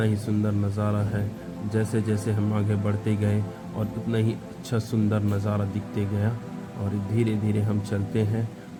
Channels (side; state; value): both; identical; correlation 1.00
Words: ही सुंदर नज़ारा है। जैसे जैसे हम आगे बढ़ते गए और उतना ही अच्छा सुंदर नज़ारा दिखते गया और धीरे धीरे हम चलते हैं